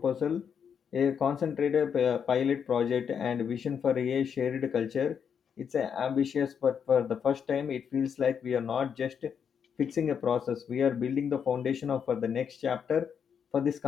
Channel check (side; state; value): right; quieter; 7.3 dB